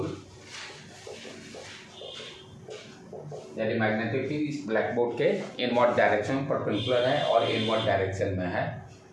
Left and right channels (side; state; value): both; identical; correlation 1.00